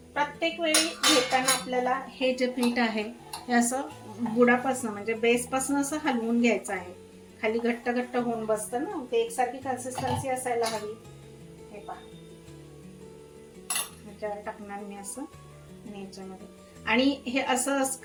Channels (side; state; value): both; identical; correlation 1.00